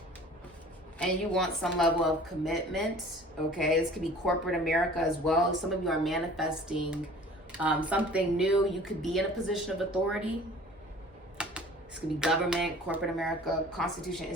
And you want some level of commitment. Okay, this could be corporate America as well. Some of you are manifesting something new. You could be in a position of authority. This could be government, corporate America, constitution,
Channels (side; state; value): both; normal; correlation 0.47